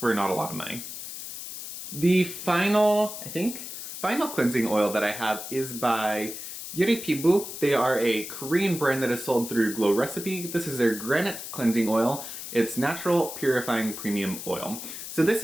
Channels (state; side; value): noise; left; hiss, 9 dB below the sound